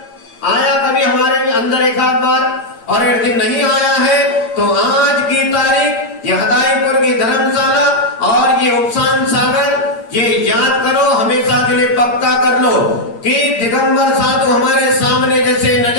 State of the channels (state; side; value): late; right; 8.7 ms